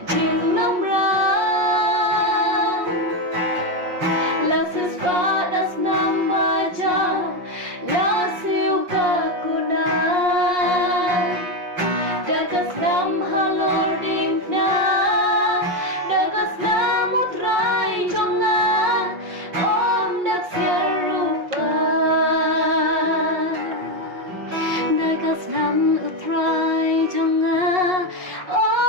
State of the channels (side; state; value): left; late; 5.5 ms